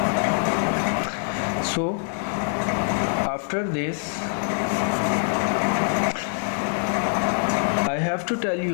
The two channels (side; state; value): right; silent; 61 dB below the other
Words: so after this I have to tell